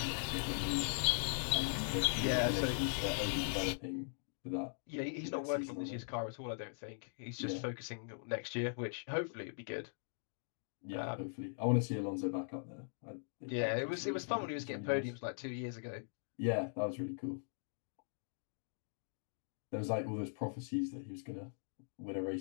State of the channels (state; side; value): silent; right; digital silence